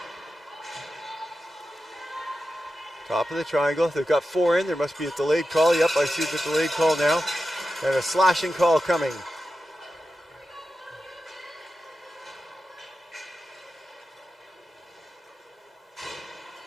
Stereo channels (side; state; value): both; normal; correlation 0.91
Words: Top of the triangle. They've got 4 in. There must be a delayed call. Yep, I see the delayed call now. And a slashing call coming.